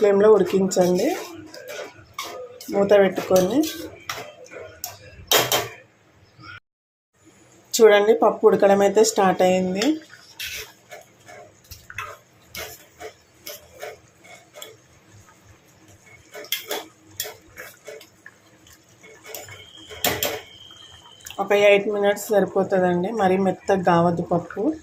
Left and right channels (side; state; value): both; identical; correlation 1.00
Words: ఫ్లేమ్లో ఉడికించండి, మూత పెట్టుకొని. చూడండి, పప్పు ఉడకడం అయితే స్టార్ట్ అయింది. ఒక 8 మినిట్స్ సరిపోతుందండి, మరీ మెత్తగా కావద్దు పప్పు.